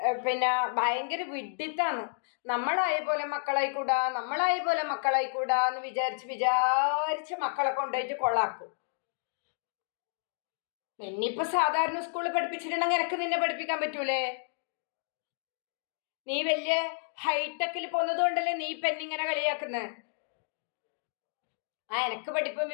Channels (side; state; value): right; silent; digital silence